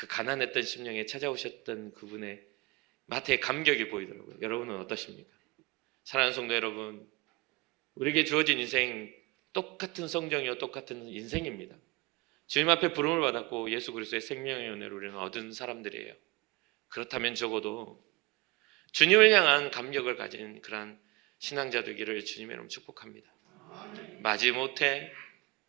가난했던 심령에 찾아오셨던 그분의 마태의 감격이 보이더라고요. 여러분은 어떠십니까? 사랑하는 성도 여러분, 우리에게 주어진 인생 똑같은 성정이요 똑같은 인생입니다. 주님 앞에 부름을 받았고 예수 그리스도의 생명의 은혜를 우리는 얻은 사람들이에요. 그렇다면 적어도 주님을 향한 감격을 가진 그러한 신앙자 되기를 주님의 이름으로 축복합니다. 마지못해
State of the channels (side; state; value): left; quieter; 25.0 dB